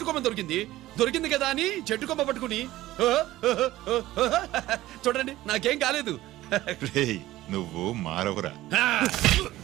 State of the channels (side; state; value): left; quieter; 16.0 dB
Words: కొమ్మ దొరికింది కదా అని చెట్టు కొమ్మ పట్టుకుని చూడండి నాకేం కాలేదు. రేయ్, నువ్వు మారవురా.